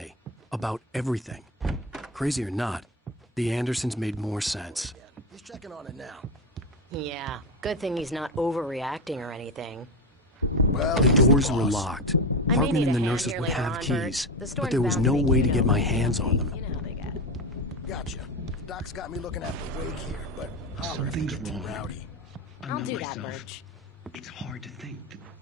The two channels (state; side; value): normal; both; correlation 0.17